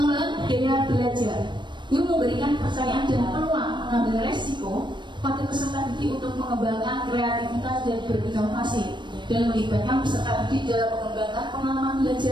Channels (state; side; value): late; left; 0.22 ms